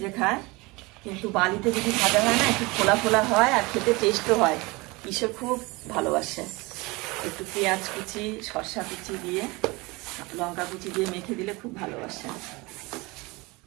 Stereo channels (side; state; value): left; quieter; 24.3 dB